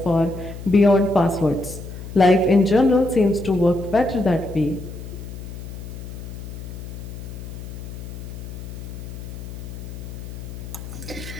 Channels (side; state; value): left; noise; hum, 10 dB below the sound